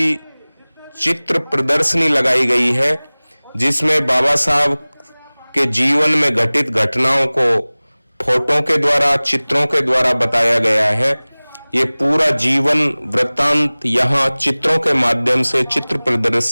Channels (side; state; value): both; inverted; correlation -1.00